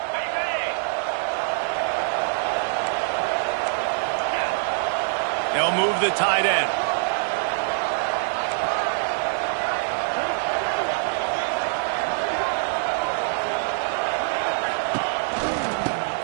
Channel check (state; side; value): silent; left; digital silence